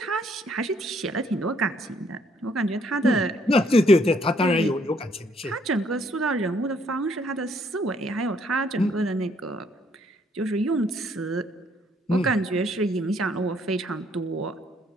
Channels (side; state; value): both; normal; correlation 0.67